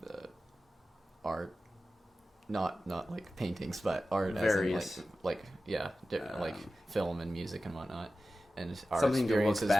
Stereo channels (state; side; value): normal; both; correlation 0.94